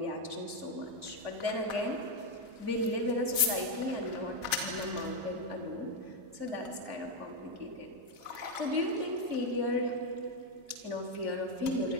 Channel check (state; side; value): late; left; 2.7 ms